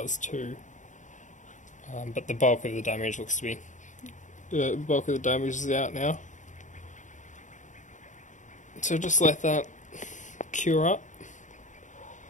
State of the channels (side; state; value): right; late; 0.36 ms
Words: too. But the bulk of the damage looks to be... The bulk of the damage is out now. So just let that cure up.